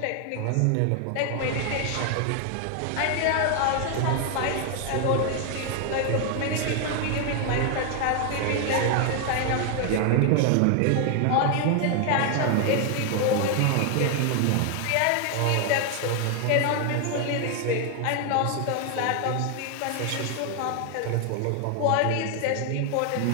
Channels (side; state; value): both; different; correlation 0.00